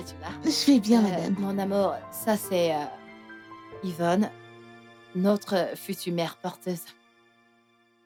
que tu vas? Je vais bien, madame. Mon amour, ça c'est Yvonne, notre future mère porteuse.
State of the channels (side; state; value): both; identical; correlation 1.00